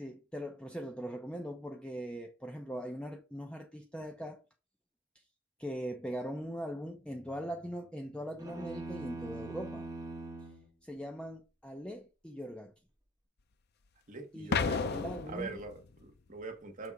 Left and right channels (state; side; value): normal; both; correlation 0.57